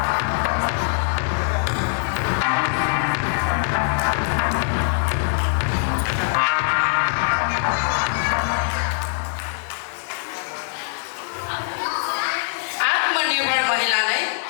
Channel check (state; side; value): silent; right; digital silence